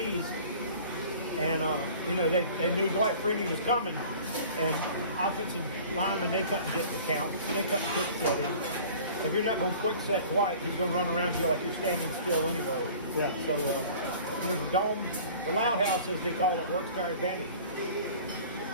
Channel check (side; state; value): both; inverted; correlation -0.46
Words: and they knew Dwight Freeney was coming, and offensive linemen, they couldn't get the count, they couldn't quick set in. If you're not going to quick set Dwight, he's going to run around you like you're standing still anyway. Yeah. So the dome, the loud house, as they call it, works to our advantage.